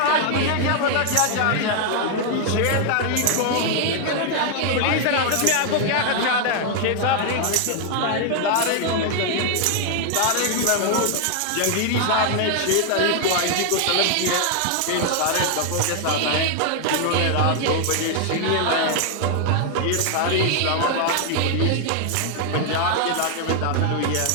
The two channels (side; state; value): both; different; correlation 0.00